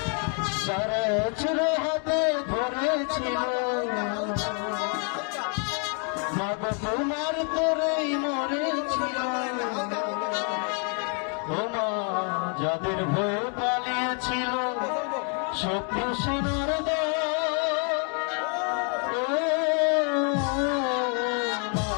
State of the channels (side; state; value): right; quieter; 39.9 dB